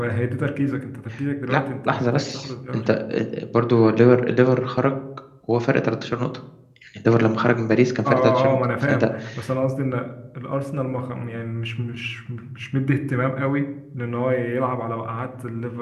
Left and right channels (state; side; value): identical; both; correlation 1.00